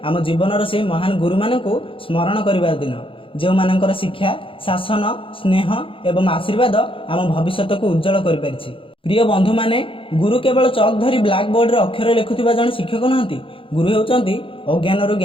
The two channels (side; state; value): right; late; 0.26 ms